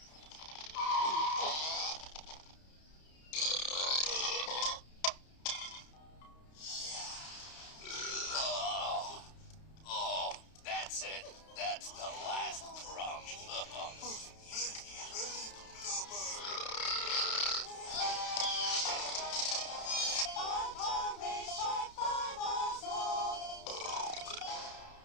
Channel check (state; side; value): late; right; 31 ms